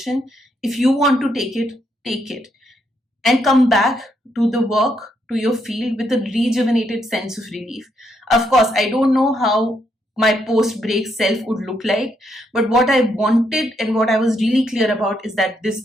if you want to take it and come back to the work, to your field with a rejuvenated sense of relief. Of course, I don't know how my post-break self would look like, but what I wanted and what I was really clear about is that this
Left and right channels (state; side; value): normal; both; correlation 0.76